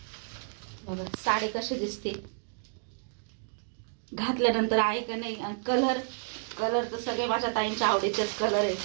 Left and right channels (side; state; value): left; silent; digital silence